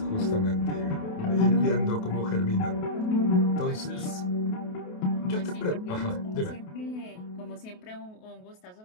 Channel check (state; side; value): late; right; 28 ms